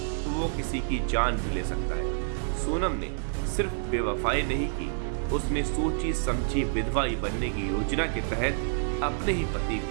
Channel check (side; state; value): left; silent; digital silence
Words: तो वो किसी की जान भी ले सकता है। सोनम ने सिर्फ बेवफाई नहीं की, उसने सोची समझी विधवा बनने की योजना के तहत अपने ही पति